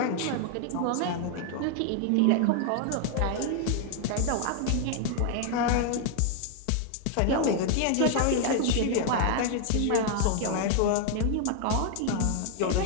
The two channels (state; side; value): different; both; correlation 0.00